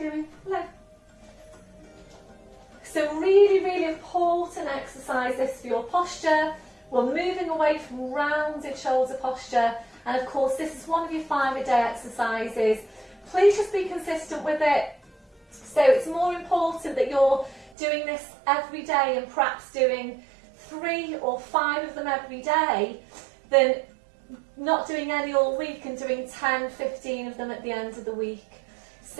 Hello. So really, really important exercise this for your posture. We're moving away from rounded shoulder posture, and of course this is one of your 5-a-day exercises. Please just be consistent with it. So it's more important that you're doing this every day and perhaps doing 3 or 5 of them every day than not doing any all week and doing 10, 15 of them at the end of the week.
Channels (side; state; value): left; drops out; at 17.7 s